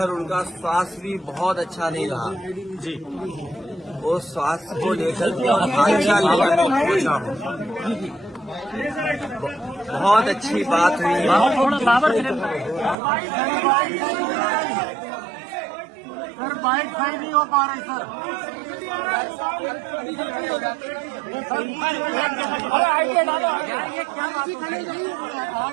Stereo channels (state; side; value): drops out; left; at 13.0 s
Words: उनका स्वास्थ्य भी बहुत अच्छा नहीं रहा। जी वो स्वास्थ्य को लेकर के और हालचाल लेकर मैं पूछा हूँ। बहुत अच्छी बात हुई है। थोड़ा पावर सर बाइक सही नहीं हो पा रही सर। यार ये क्या बात हो रही है?